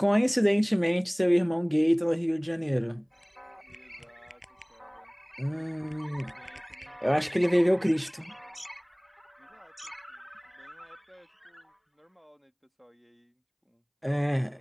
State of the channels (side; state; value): both; identical; correlation 1.00